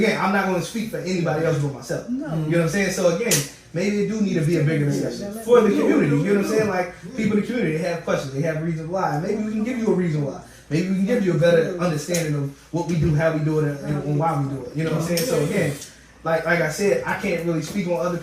I'm not going to speak for anybody else but myself. You know what I'm saying? So again, maybe it do need to be a bigger discussion for the community. You know what I'm saying? Like people in the community, they have questions, they have reasons why. Maybe we can give you a reason why. Maybe we can give you a better understanding of what we do, how we do it, and why we do it. You know what I'm saying? So again, like I said, I can't really speak on other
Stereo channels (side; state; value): both; identical; correlation 1.00